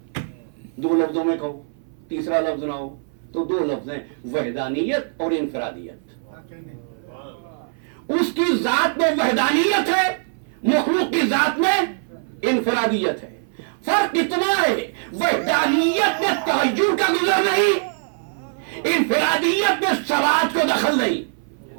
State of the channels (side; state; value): left; silent; 58 dB below the other